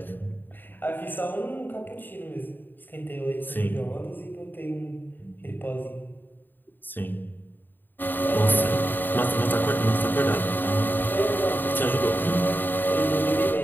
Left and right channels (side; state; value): right; late; 0.092 ms